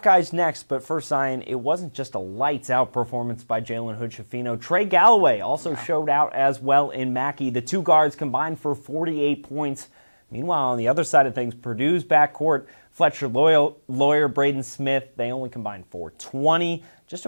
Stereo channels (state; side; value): inverted; both; correlation -1.00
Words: next, but first, Zion, it wasn't just a lights-out performance by Jalen Hood-Schifino. Trey Galloway also showed out as well in Mackey. The two guards combined for 48 points. Meanwhile, on the other side of things, Purdue's backcourt, Fletcher Lawyer, Braden Smith, they only combined for 20. Just